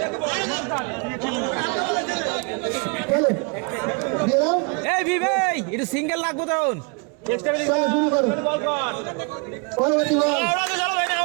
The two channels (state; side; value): quieter; left; 33.8 dB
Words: একটু সিঙ্গেল লাগবো তখন। চলো শুরু করো পরবর্তী বল